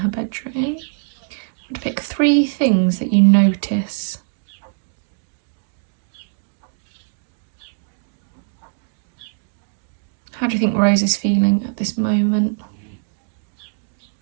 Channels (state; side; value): silent; left; digital silence